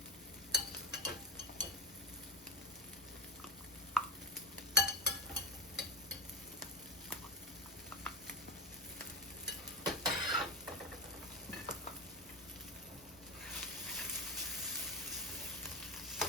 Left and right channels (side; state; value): both; normal; correlation 0.20